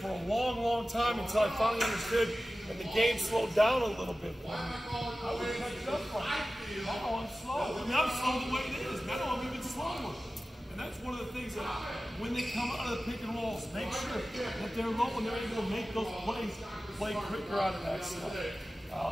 for a long, long time until I finally understood, and the game slowed down a little bit. I would catch up from it. Oh, I'm slow. I mean, I'm slow the way it is. Now I'm even slower. And that's one of the things that when they come out of the pick and rolls, make sure that they're low and they're able to make those plays, play quicker out of that stuff.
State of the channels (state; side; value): normal; both; correlation 0.95